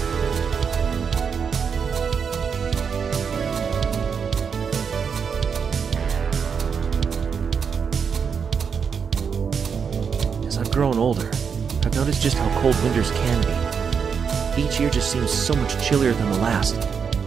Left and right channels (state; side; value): quieter; left; 6.4 dB